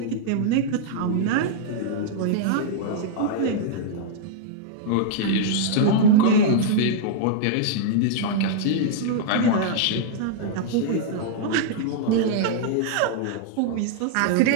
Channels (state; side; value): different; both; correlation -0.01